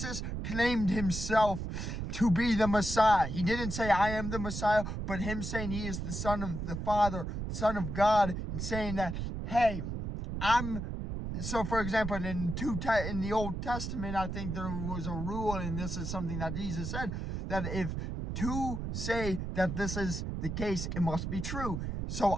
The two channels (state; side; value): noise; right; rumble, 4 dB below the sound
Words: claimed himself to be the Messiah. He didn't say, "I am the Messiah," but him saying he is the Son of the Father, Son of God, and saying that, hey, so, for example, in the Old Testament, I think there was a rule, and this is something that Jesus said, that if two say that this is the case, it must be true. So